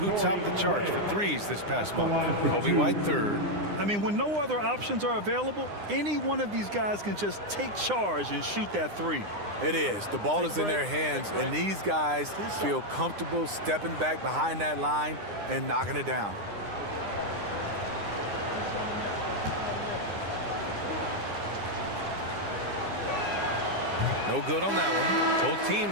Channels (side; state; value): left; late; 9.8 ms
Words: topped the charts for threes this past month. Kobe White third. I mean, when no other options are available, any one of these guys can just take charge and shoot that three. It is. The ball is in their hands, and these guys feel comfortable stepping back behind that line and knocking it down. No good on that one. Both